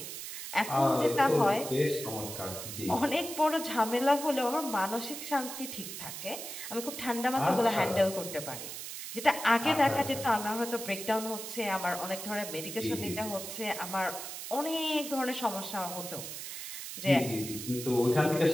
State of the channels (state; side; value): noise; right; hiss, 8 dB below the sound